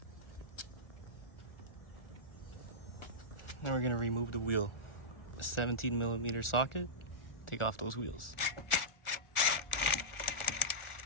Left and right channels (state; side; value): late; right; 1.4 ms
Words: Now we're gonna remove the wheel. A 17mm socket. Take off those wheels.